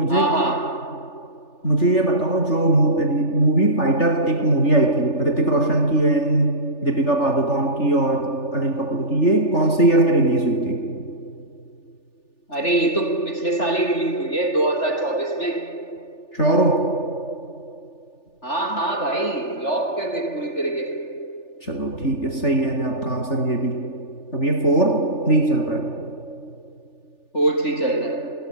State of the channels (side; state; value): right; late; 3.4 ms